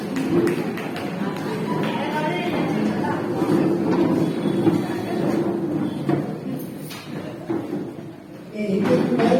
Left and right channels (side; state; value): both; identical; correlation 1.00